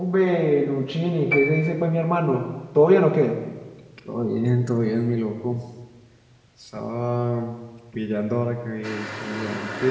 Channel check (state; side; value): identical; both; correlation 1.00